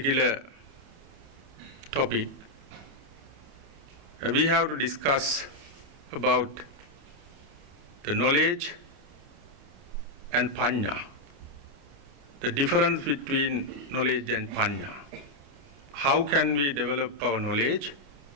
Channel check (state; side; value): late; left; 28 ms